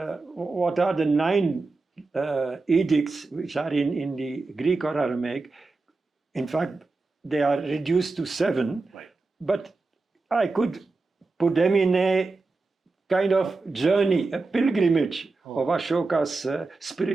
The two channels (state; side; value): quieter; left; 3.7 dB